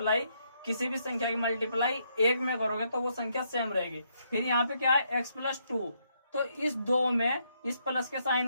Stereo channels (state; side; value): inverted; both; correlation -0.75